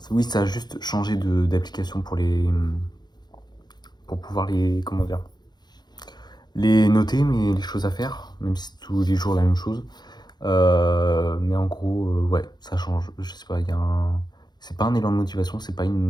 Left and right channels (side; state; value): right; late; 0.21 ms